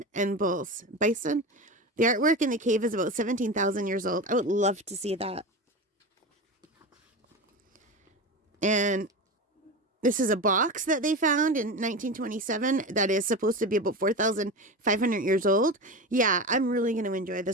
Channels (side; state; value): both; normal; correlation 0.25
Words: and bulls. Bison? The artwork in the cave is about 17,000 years old. I would love to see that. And this is a box that they found in 1927 that is supposed to be about 4,500 years old. Yeah, I'm really going to enjoy